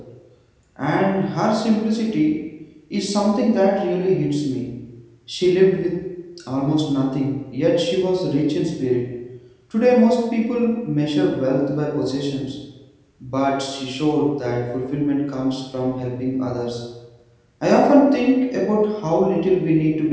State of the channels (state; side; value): identical; both; correlation 1.00